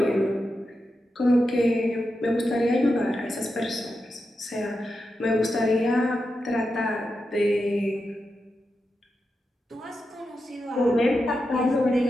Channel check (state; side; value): normal; both; correlation 0.88